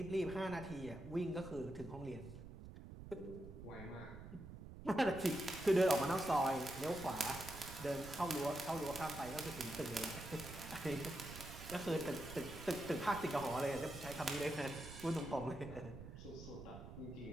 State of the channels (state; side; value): noise; right; rumble, 12 dB below the sound